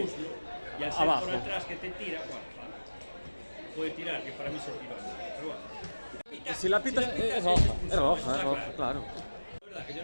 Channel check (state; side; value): inverted; both; correlation -1.00